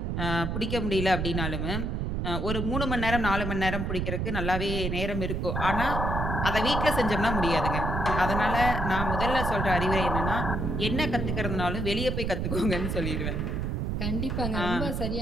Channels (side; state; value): right; noise; rumble, 1 dB below the sound